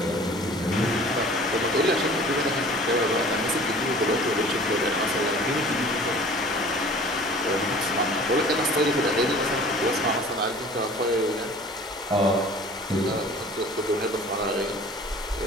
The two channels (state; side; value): normal; both; correlation 0.46